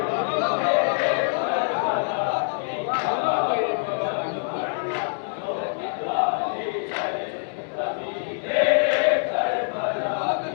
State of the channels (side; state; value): right; silent; digital silence